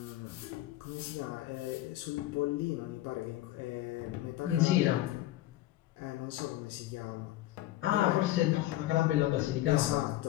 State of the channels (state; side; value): quieter; right; 15.2 dB